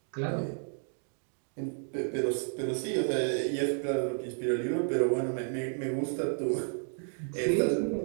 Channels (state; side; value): silent; left; 57 dB below the other